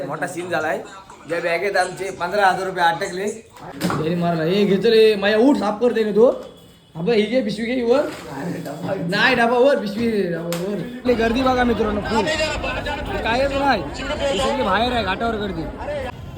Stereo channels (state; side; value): identical; both; correlation 1.00